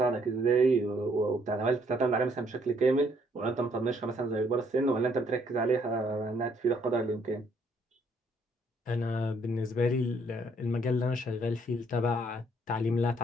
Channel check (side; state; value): both; normal; correlation 0.67